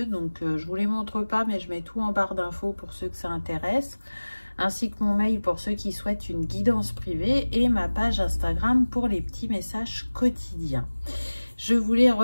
Donc je vous les montre pas, mais je mets tout en barre d'infos pour ceux que ça intéresse, ainsi que mon mail pour ceux qui souhaitent une guidance privée et ma page Instagram pour les petits messages quotidiens. Je voulais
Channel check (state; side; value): inverted; both; correlation -1.00